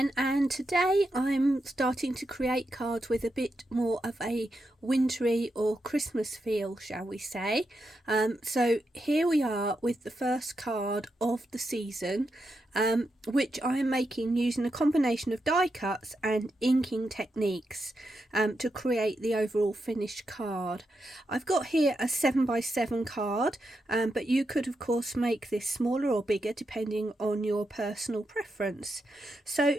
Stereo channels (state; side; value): normal; both; correlation 0.85